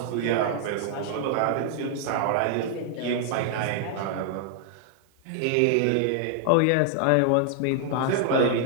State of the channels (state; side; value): different; both; correlation -0.01